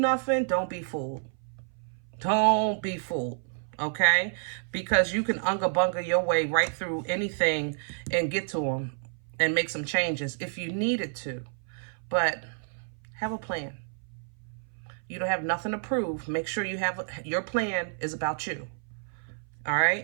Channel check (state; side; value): silent; left; 57 dB below the other